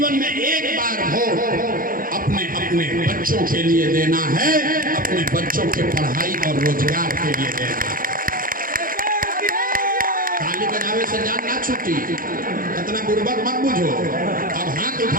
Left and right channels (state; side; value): late; left; 0.41 ms